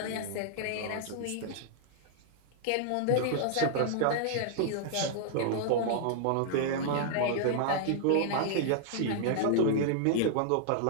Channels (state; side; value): different; both; correlation -0.01